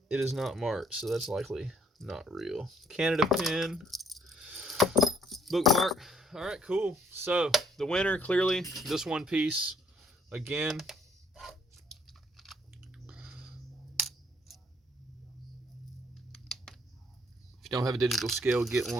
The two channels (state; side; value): normal; both; correlation 0.65